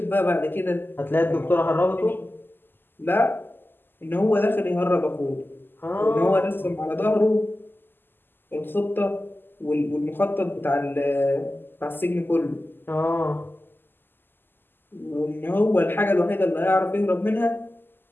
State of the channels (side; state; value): right; late; 0.095 ms